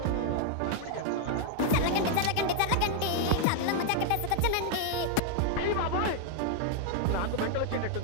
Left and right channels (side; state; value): both; different; correlation 0.00